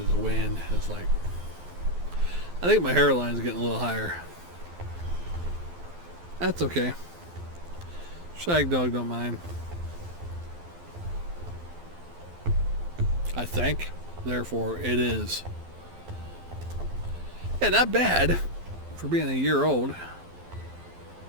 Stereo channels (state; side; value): late; left; 12 ms